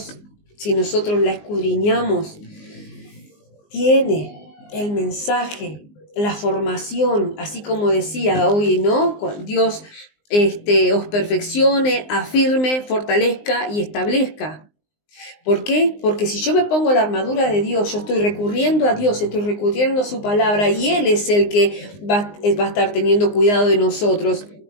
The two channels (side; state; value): right; late; 19 ms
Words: si nosotros la escudriñamos, tiene el mensaje, la formación, así como decía hoy, ¿no? Dios os perfeccione, afirme, fortalezca y establezca. ¿Por qué? Porque si yo me pongo la armadura de Dios, yo estoy recurriendo a Dios, estoy recurriendo a su palabra y Él es el que va a estar teniendo cuidado de nosotros.